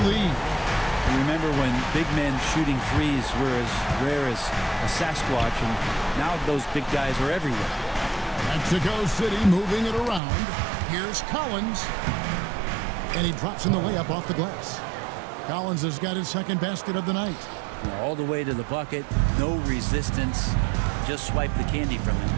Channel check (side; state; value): left; drops out; at 10.2 s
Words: lead. Remember when big men shooting threes were as rare as a Sasquatch, and now those big guys are everywhere. Mexico City moving it around. Here's Collins. And he drops in the layup off the glass. Collins has got his second basket of the night. All the way to the bucket, no resistance, just swipe the candy from him.